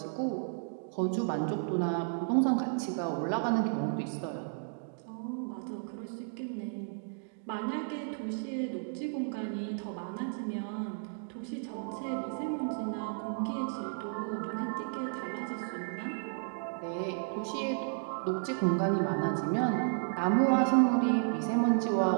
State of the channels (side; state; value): left; silent; digital silence